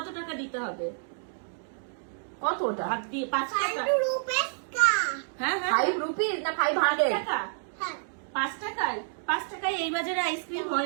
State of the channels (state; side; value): silent; left; digital silence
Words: টাকা দিতে হবে? কতটা? হাত দিয়ে 5 টাকা। 5 রুপে কা। হ্যাঁ 5 রুপিস না 500 টাকা? হ্যাঁ। 5 টাকায় এই বাজারে আইসক্রিম